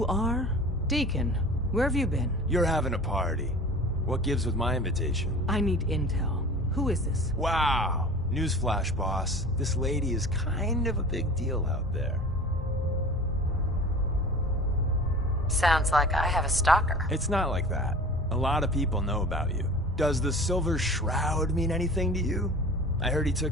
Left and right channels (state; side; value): normal; both; correlation 0.39